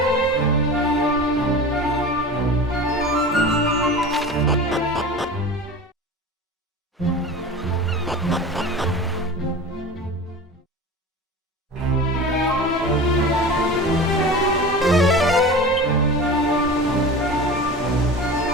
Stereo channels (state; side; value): normal; both; correlation 0.33